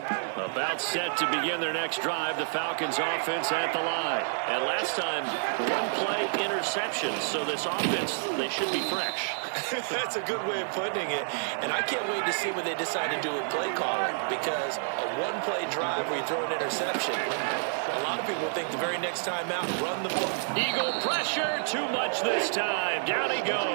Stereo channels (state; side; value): silent; left; digital silence